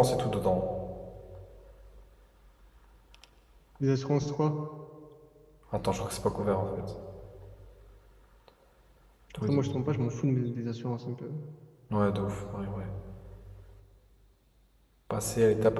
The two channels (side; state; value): both; identical; correlation 1.00